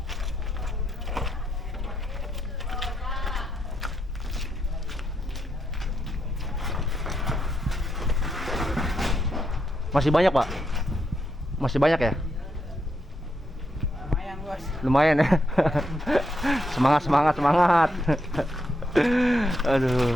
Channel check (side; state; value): both; normal; correlation 0.81